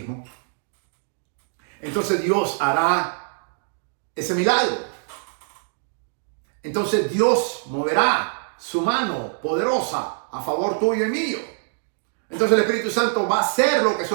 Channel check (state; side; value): silent; left; digital silence